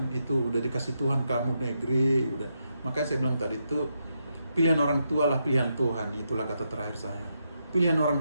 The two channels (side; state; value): both; inverted; correlation -0.82